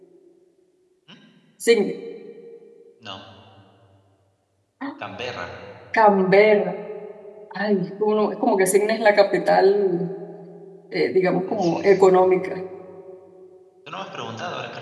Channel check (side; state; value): both; identical; correlation 1.00